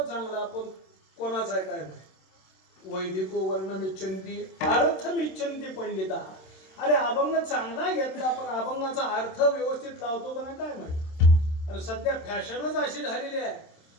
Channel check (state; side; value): late; right; 27 ms